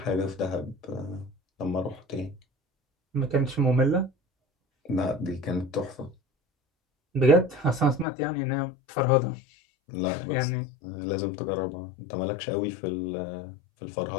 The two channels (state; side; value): drops out; right; at 8.1 s